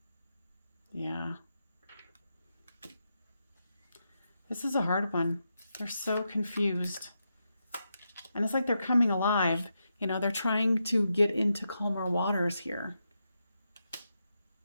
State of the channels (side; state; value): both; inverted; correlation -0.85